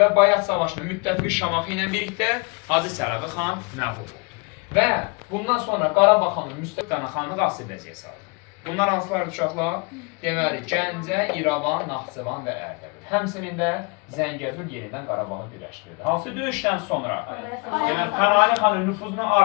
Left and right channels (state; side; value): quieter; right; 32.6 dB